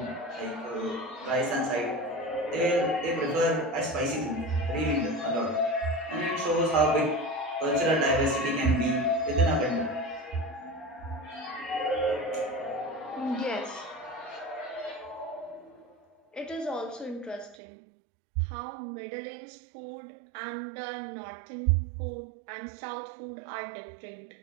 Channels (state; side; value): drops out; left; at 17.6 s